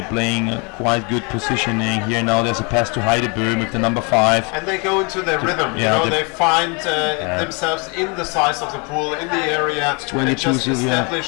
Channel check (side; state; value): right; quieter; 32.2 dB